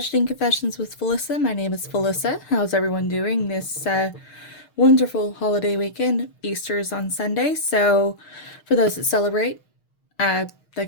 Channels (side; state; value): right; late; 6.5 ms